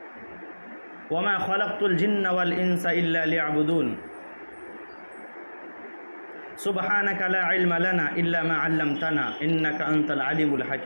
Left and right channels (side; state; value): both; inverted; correlation -1.00